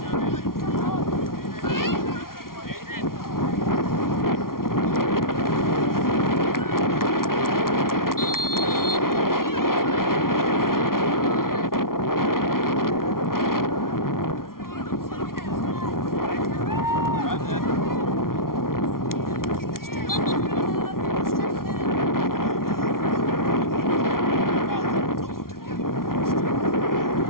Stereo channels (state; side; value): late; right; 0.92 ms